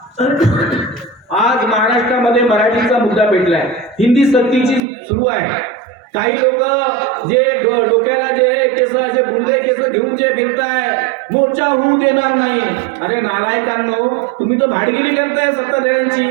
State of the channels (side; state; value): left; drops out; at 4.8 s